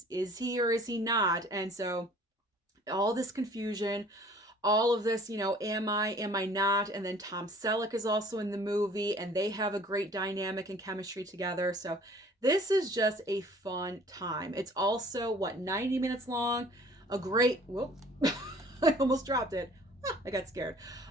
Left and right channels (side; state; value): both; normal; correlation 0.52